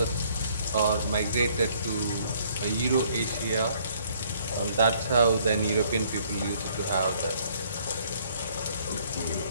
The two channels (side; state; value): both; inverted; correlation -0.63